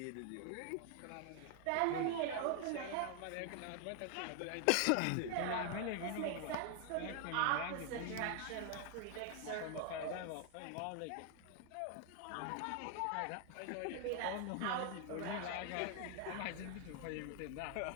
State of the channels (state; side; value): different; both; correlation 0.00